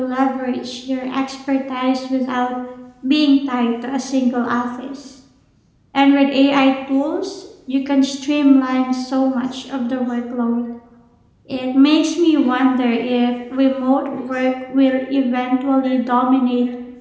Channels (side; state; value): both; identical; correlation 1.00